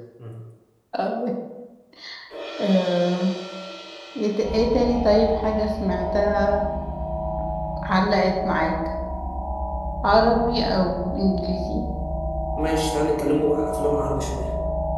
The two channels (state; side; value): identical; both; correlation 1.00